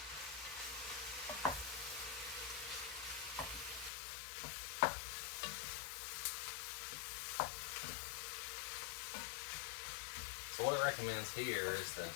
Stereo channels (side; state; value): right; drops out; at 3.9 s